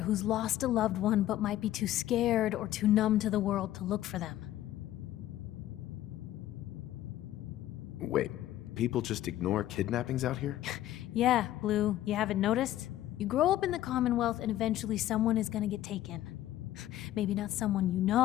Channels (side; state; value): right; quieter; 13.6 dB